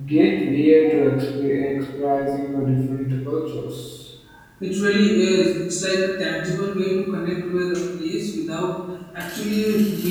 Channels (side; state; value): both; identical; correlation 1.00